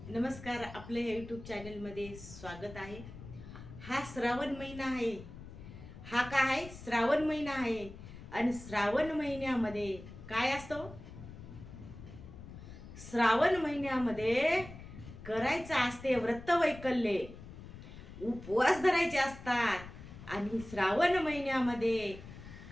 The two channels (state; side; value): noise; left; rumble, 14 dB below the sound